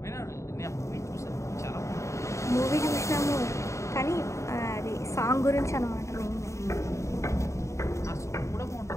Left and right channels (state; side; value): late; right; 0.14 ms